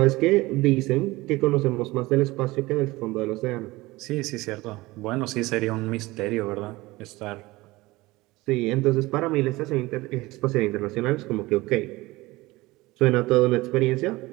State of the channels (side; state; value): left; quieter; 20.4 dB